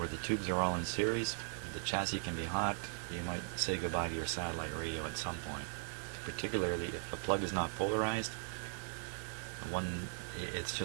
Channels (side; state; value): left; silent; 52 dB below the other